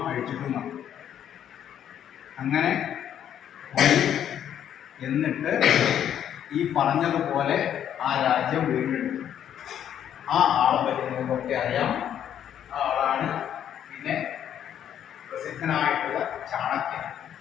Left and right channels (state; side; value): quieter; right; 9.9 dB